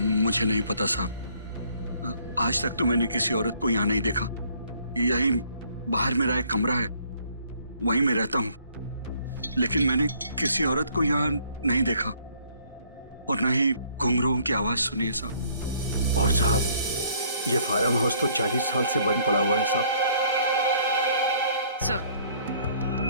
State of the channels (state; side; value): inverted; both; correlation -0.61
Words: मुझे नहीं पता साहब, आज तक तो मैंने किसी औरत को यहाँ नहीं देखा। यहीं बाहर मेरा एक कमरा है, वहीं मैं रहता हूँ। लेकिन मैंने किसी औरत को यहाँ नहीं देखा और न ही घुंघरूओं की आवाज सुनी है साहब। और साहब, ये फार्म हाउस तो 40 साल से बंद पड़ा हुआ है साहब।